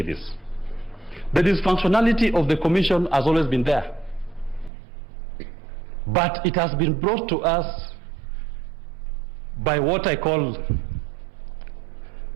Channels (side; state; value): left; drops out; at 4.7 s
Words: this. The dysfunctionality of the commission has always been there. But it has been brought to us by what I call